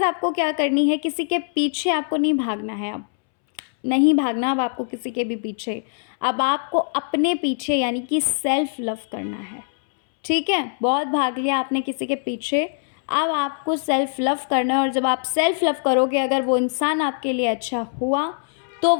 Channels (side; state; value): right; silent; 64 dB below the other